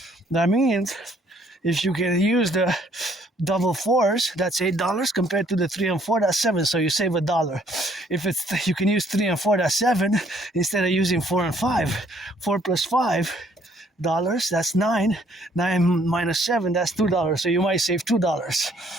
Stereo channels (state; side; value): normal; both; correlation 0.64